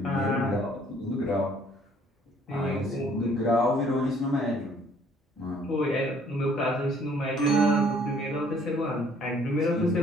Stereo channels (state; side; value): normal; both; correlation 0.60